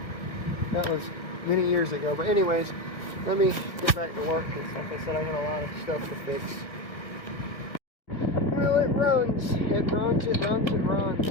That was many years ago. But anyways, let me get back to work, because like I said, I got a lot of stuff to fix. Well, it runs. It runs, it runs, it runs.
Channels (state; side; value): late; right; 1.5 ms